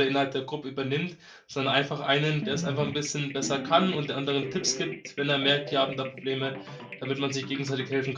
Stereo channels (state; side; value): identical; both; correlation 1.00